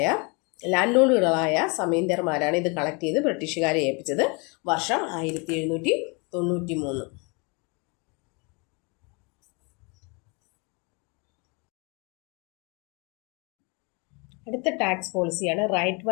ലാൻഡ് ലോർഡുകളായ സമീന്ദാർമാരാണ് ഇത് കളക്ട് ചെയ്ത് ബ്രിട്ടീഷുകാരെ ഏൽപ്പിച്ചത്. വർഷം 1793. അടുത്ത ടാക്സ് പോളിസിയാണ് റൈറ്റ്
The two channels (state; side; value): quieter; right; 31.0 dB